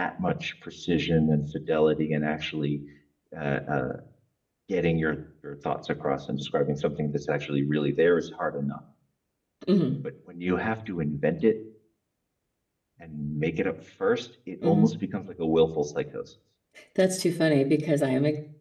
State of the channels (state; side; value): identical; both; correlation 1.00